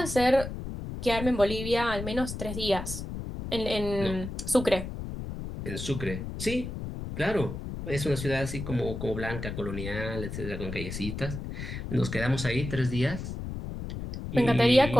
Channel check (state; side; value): noise; left; rumble, 7 dB below the sound